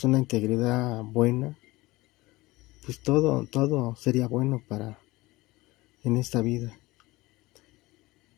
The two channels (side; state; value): right; quieter; 20.3 dB